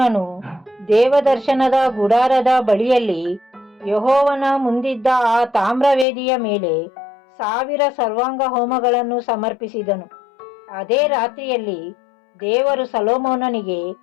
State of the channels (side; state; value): right; drops out; at 6.1 s